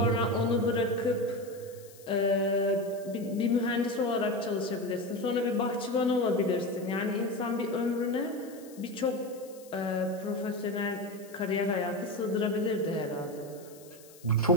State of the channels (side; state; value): left; noise; hiss, 22 dB below the sound